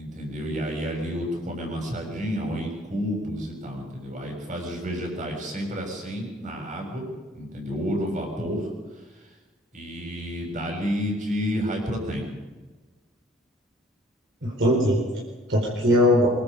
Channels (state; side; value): normal; both; correlation 0.55